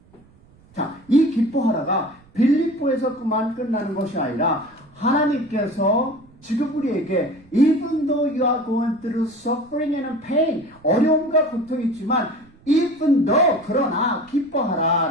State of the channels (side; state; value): right; noise; rumble, 28 dB below the sound